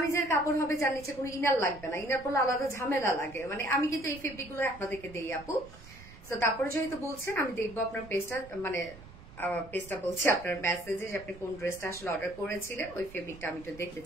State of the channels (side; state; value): right; noise; rumble, 18 dB below the sound